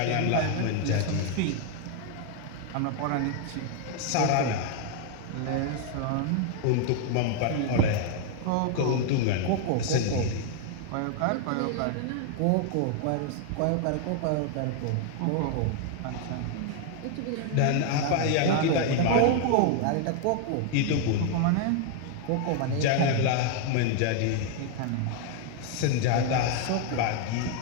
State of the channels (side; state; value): both; different; correlation 0.00